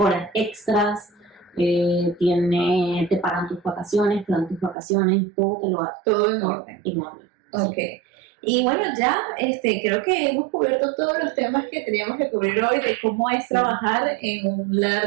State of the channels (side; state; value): left; drops out; at 4.8 s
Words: extras. Te pagan tus vacaciones, te dan tus vacaciones, todo te lo hacen. Todo en orden. En orden. Ok. Y bueno, ya creo que hemos cubierto todos los temas que teníamos que cubrir hoy de cómo es trabajar en un